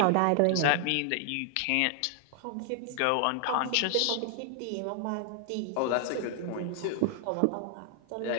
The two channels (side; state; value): both; different; correlation 0.00